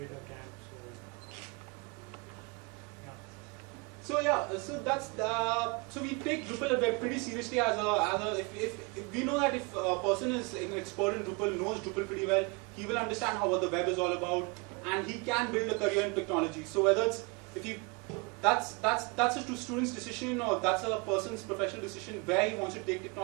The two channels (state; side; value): quieter; left; 29.0 dB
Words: a camp. So that's so we take Drupal web pretty seriously as if we know that if a person is an expert in Drupal, knows Drupal pretty well, he will understand what the web is all about, and he can build a career in technology. So whether it's that's a student's decision, or that's a person's professional decision where he wants to take